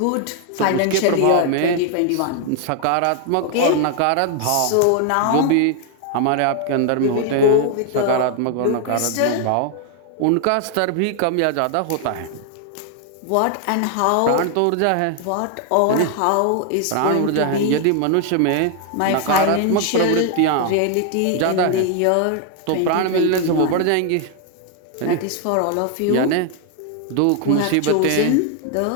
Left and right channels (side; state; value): both; different; correlation 0.00